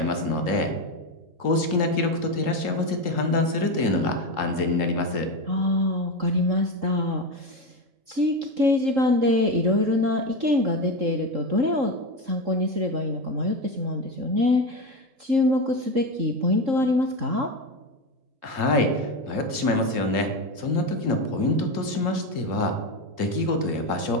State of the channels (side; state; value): left; late; 3.7 ms